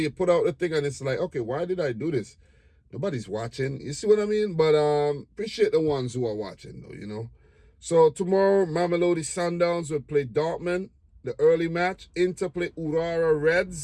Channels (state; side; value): identical; both; correlation 1.00